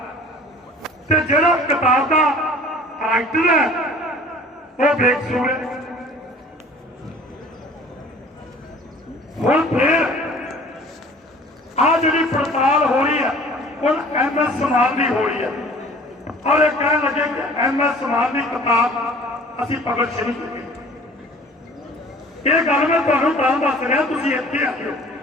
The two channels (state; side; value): normal; both; correlation 0.48